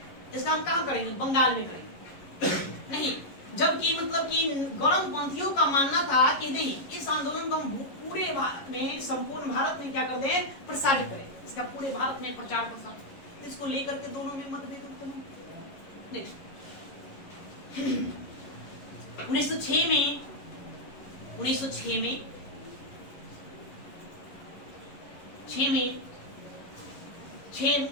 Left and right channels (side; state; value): right; late; 11 ms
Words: इसका हम कहां करेंगे, बंगाल में करेंगे नहीं, जबकि मतलब कि गर्मपंथियों का मानना था कि नहीं, इस आंदोलन को हम पूरे भारत में, संपूर्ण भारत में क्या कर दें, प्रसारित करें, इसका पूरे भारत में प्रचार प्रसार, इसको लेकर के दोनों में मतभेद उत्पन्न हुए। नेक्स्ट 1906 में